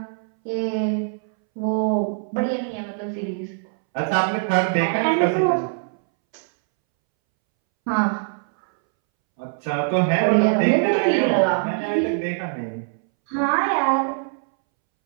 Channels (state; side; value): silent; left; 64 dB below the other